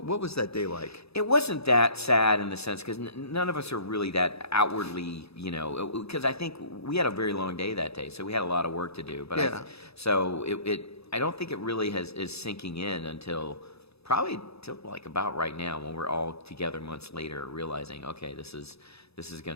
was that day like? It wasn't that sad in the sense because none of us are really that outwardly, because I think we had a very long day that day, so we had a lot of work to do. But I don't think it really is sinking in until probably till like about right now when we're all together months later, realizing okay, this is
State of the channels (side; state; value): right; late; 0.78 ms